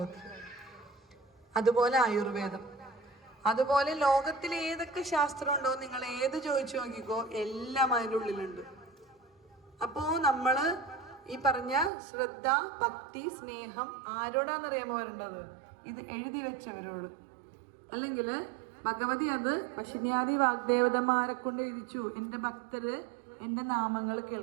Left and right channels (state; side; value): drops out; left; at 11.9 s